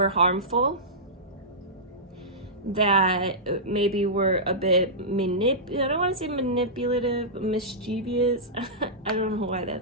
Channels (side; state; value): both; normal; correlation -0.15